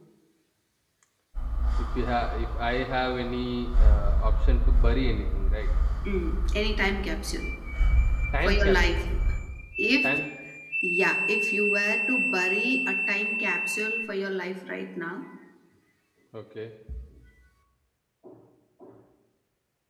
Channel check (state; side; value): identical; both; correlation 1.00